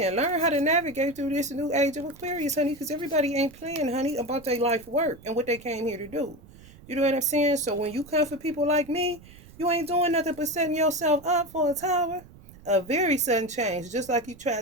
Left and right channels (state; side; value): noise; right; rumble, 21 dB below the sound